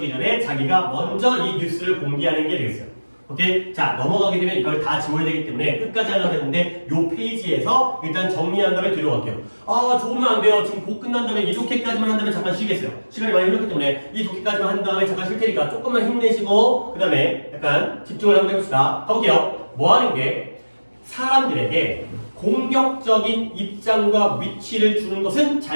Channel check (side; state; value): both; inverted; correlation -1.00